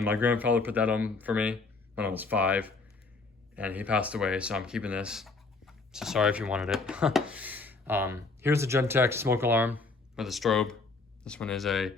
my grandfather put that on for me when I was 5, and he passed away, so I'm keeping this. So sorry if you wanted it. Here's a Gentex smoke alarm with a strobe. This one is a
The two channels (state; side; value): quieter; right; 3.8 dB